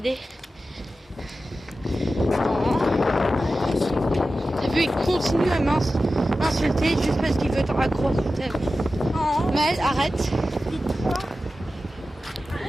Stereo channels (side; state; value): both; normal; correlation 0.94